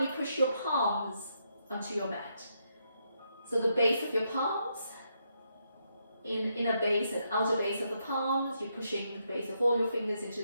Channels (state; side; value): inverted; both; correlation -0.79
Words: push your palms onto your mat. So the base of your palms, inner base and outer base of the palms, you're pushing the base of all your fingers into